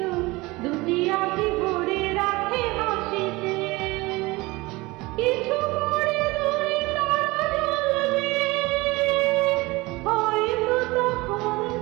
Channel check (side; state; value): left; quieter; 22.2 dB